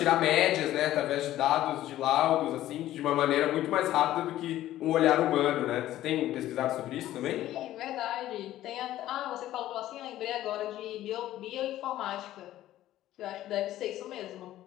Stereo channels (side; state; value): right; quieter; 13.9 dB